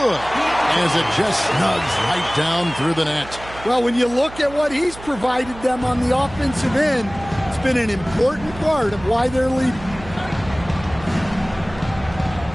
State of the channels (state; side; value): noise; right; hum, 16 dB below the sound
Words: as it just snugs right down through the net. Well, when you look at what he's provided them on the offensive end, it's been an important part of why they're leading.